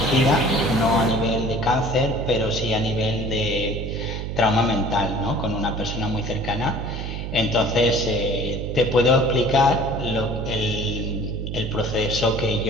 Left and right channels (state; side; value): noise; right; hum, 5 dB below the sound